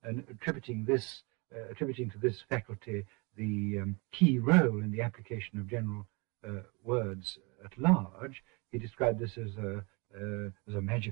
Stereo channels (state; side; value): quieter; left; 29.2 dB